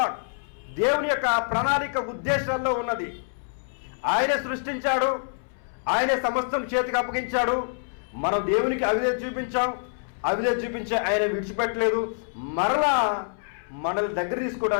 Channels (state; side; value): silent; right; 61 dB below the other